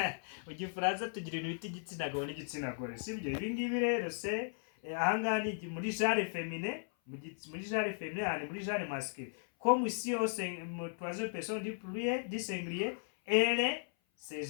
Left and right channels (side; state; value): right; silent; 54 dB below the other